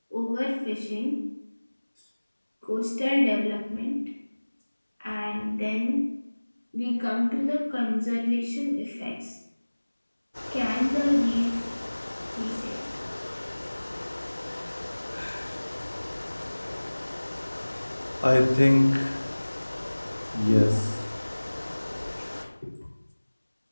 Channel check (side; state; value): both; inverted; correlation -1.00